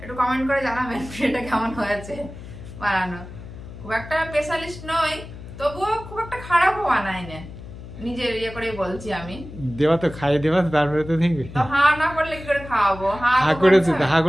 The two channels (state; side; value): noise; left; hum, 14 dB below the sound